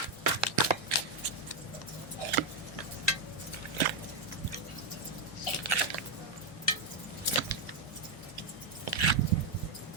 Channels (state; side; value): quieter; left; 3.2 dB